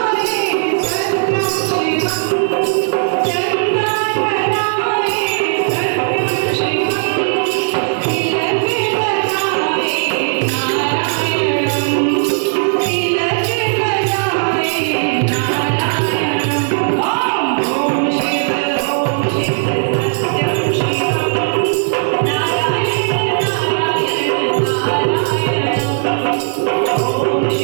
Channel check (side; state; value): left; silent; digital silence